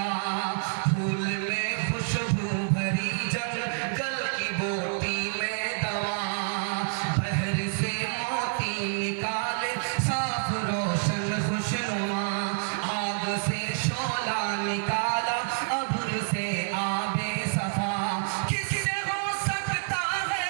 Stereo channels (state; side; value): silent; left; digital silence